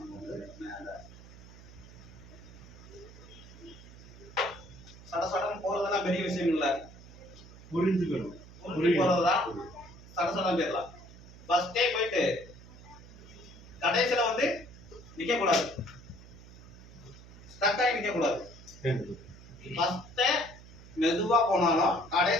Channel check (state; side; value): noise; right; hum, 19 dB below the sound